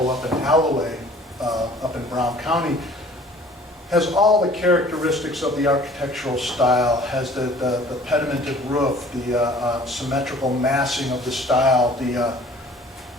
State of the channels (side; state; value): both; normal; correlation 0.51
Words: up in Alloway, up in Brown County. Has all the characteristics of the architectural style, has the pedimented roof, the symmetrical massing of the style, the